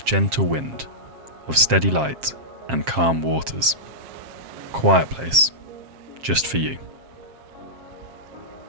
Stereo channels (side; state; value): left; late; 7.5 ms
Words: gentle wind, of steady light and calm waters. Quiet place, just for you.